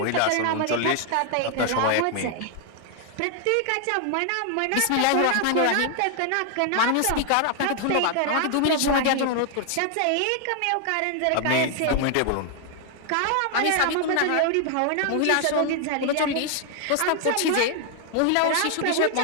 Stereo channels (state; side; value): different; both; correlation 0.00